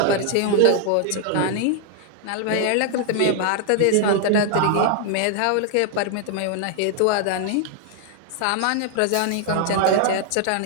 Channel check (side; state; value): both; different; correlation 0.00